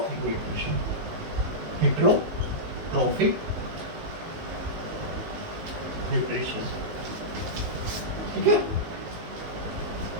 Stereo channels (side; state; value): left; late; 19 ms